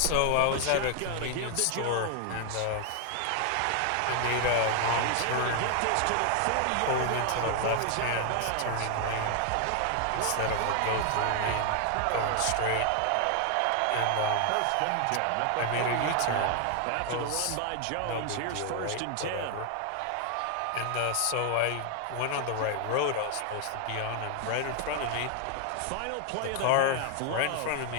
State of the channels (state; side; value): different; both; correlation 0.00